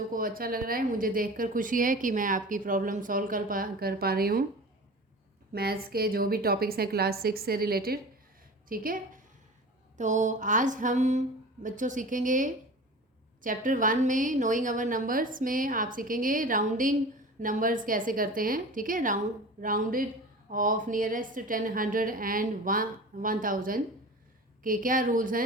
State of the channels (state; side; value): normal; both; correlation 0.36